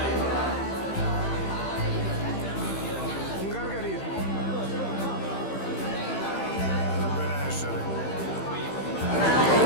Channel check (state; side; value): late; right; 15 ms